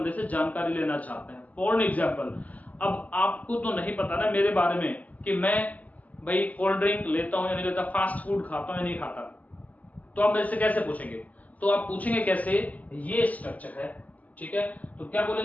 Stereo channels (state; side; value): late; right; 0.075 ms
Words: से जानकारी लेना चाहते हैं। फॉर एग्जाम्पल, अब आपको तो नहीं पता ना मेरे बारे में कि मैं भाई कोल्ड ड्रिंक लेता हूं या नहीं लेता, फास्ट फूड खाता हूं या नहीं खाता, तो आप मेरे से कैसे पूछेंगे? तो आप पूछेंगे कैसे? ये स्ट्रक्चर है। ठीक है, तो क्या